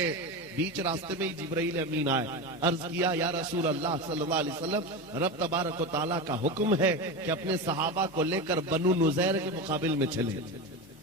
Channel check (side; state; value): both; normal; correlation 0.21